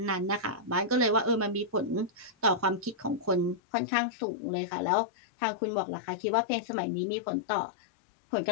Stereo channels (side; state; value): right; drops out; at 3.6 s